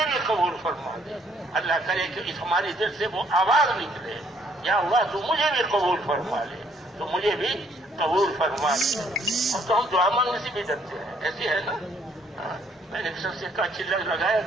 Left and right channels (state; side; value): normal; both; correlation 0.65